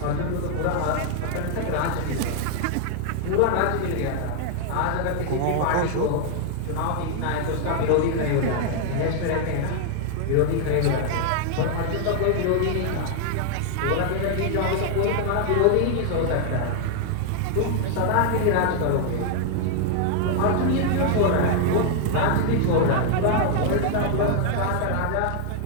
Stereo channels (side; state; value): both; different; correlation 0.00